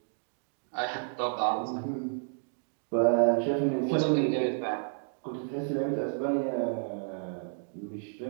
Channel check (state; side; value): silent; left; digital silence